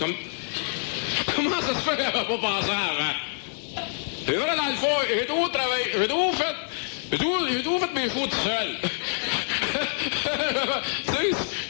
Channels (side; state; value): right; silent; digital silence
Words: Comment ça se fait qu'elle n'a pas pensé avant? C'est vrai, dans le fond, j'ai tout travaillé, j'ai tout fait mes fous tout seul. Tu sais,